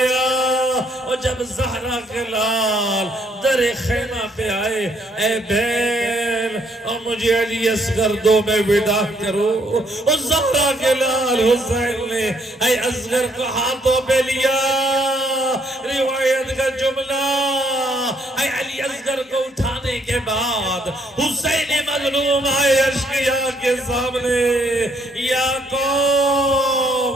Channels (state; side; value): normal; both; correlation 0.69